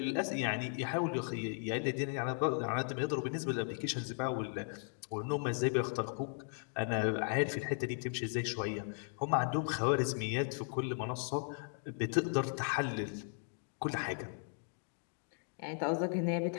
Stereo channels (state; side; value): silent; right; 53 dB below the other